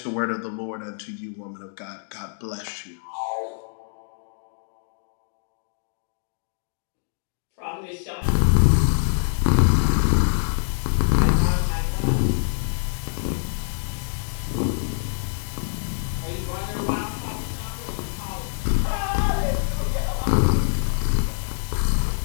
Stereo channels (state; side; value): silent; right; digital silence